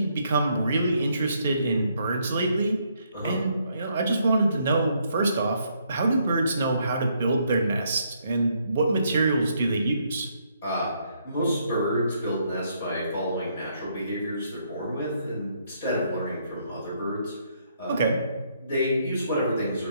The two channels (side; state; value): both; inverted; correlation -0.72